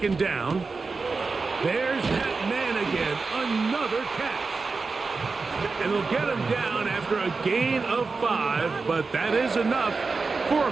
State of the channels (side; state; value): left; quieter; 4.3 dB